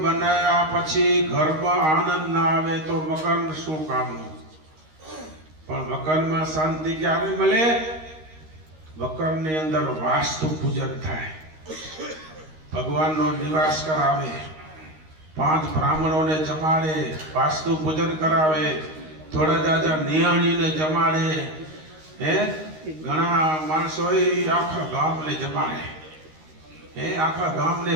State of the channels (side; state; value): left; late; 13 ms